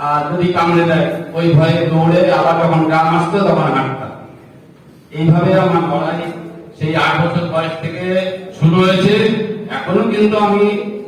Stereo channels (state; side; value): identical; both; correlation 1.00